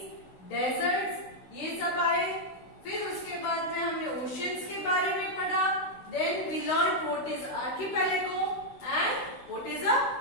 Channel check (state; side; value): late; right; 16 ms